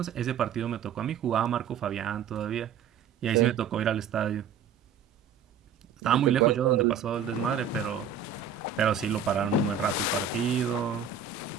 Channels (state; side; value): quieter; left; 7.2 dB